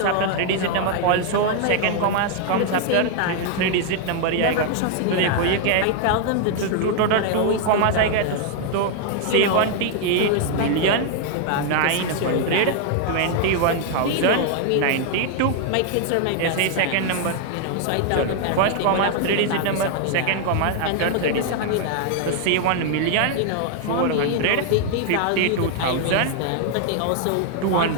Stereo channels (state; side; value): different; both; correlation 0.00